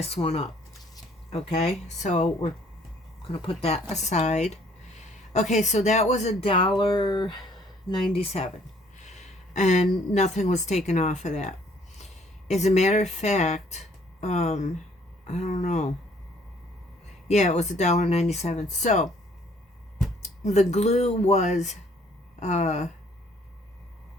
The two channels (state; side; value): normal; both; correlation 0.61